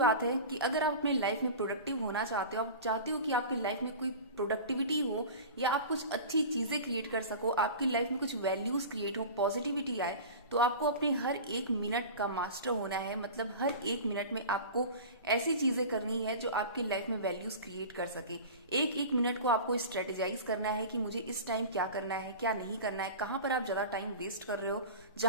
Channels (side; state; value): both; inverted; correlation -0.34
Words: है कि अगर आप अपने life में प्रोडक्टिव होना चाहते हो, आप चाहते हो कि आपकी लाइफ में कोई प्रोडक्टिविटी हो या आप कुछ अच्छी चीजें क्रिएट कर सको, आपकी लाइफ में कुछ वैल्यूज क्रिएट हो, पॉजिटिविटी आए, तो आपको अपने हर एक मिनट का मास्टर होना है। मतलब हर एक मिनट में आपको ऐसी चीजें करनी है जो आपकी लाइफ में वैल्यूज क्रिएट कर सके। एक एक मिनट को आपको स्ट्रेटेजाइज करना है कि मुझे इस टाइम क्या करना है, क्या नहीं करना है, कहाँ पर आप ज्यादा टाइम वेस्ट कर रहे हो,